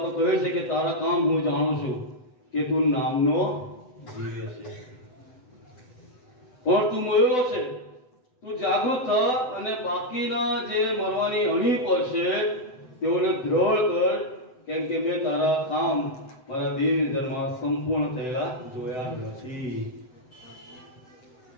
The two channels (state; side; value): late; right; 7.9 ms